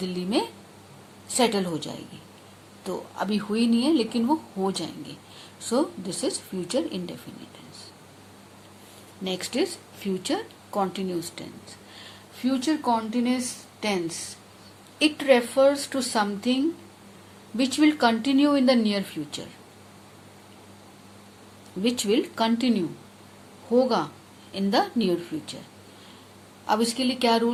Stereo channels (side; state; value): both; identical; correlation 1.00